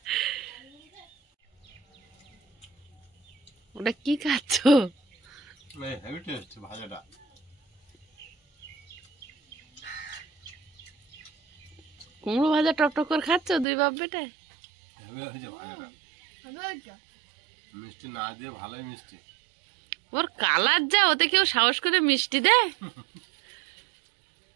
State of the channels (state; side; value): drops out; left; at 13.7 s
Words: ওটা কি খাচ্ছ? হেভি টেস্ট ভাজাটা। কুমড়ো ভাজা টক করে খাচ্ছ দুই বাপ বেটা? হেভি হয়েছে ভাজাটা, হবে ওইটা? মিষ্টি না দিয়ে ভালোই মিষ্টি। ওর কালার যা, ওতে কেউ সাহস করে মিষ্টি দেয়?